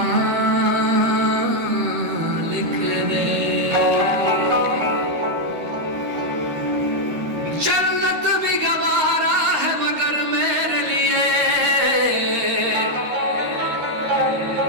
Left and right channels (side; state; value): left; late; 13 ms